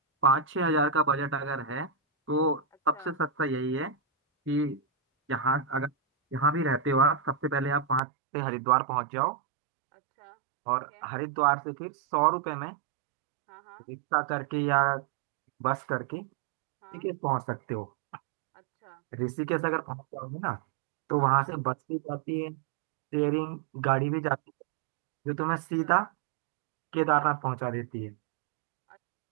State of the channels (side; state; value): left; drops out; at 8.0 s